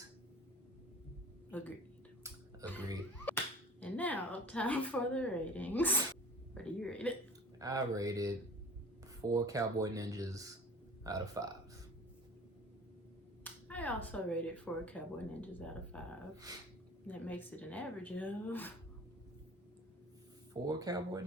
Agreed. And now, time for the ratings. What do you rate it? I rated 4 Cowboy Ninjas out of 5. I also rated 4 Cowboy Ninjas out of 5. That makes it an average of 4 Cowboy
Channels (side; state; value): both; normal; correlation 0.42